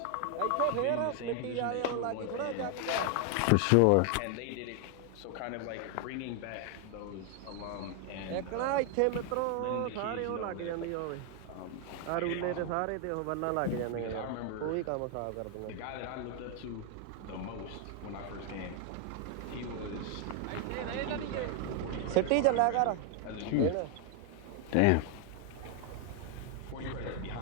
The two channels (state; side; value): different; both; correlation 0.00